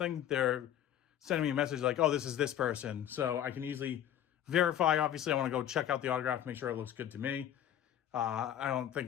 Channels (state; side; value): quieter; right; 10.7 dB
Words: they're sending me a message like, oh, this is this person. So I can easily verify. Obviously, I want to go check out the autograph, make sure it looks good to me. I don't think